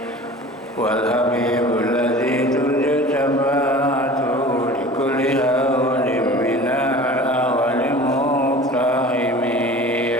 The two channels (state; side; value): normal; both; correlation 0.41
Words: Wal habibul ladzi turja syafa'atuhu li kulli hawlin minal awwali muqtahimi